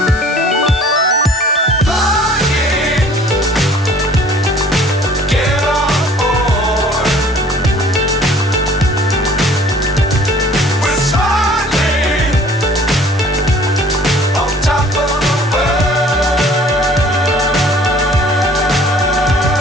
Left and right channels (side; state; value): both; normal; correlation 0.52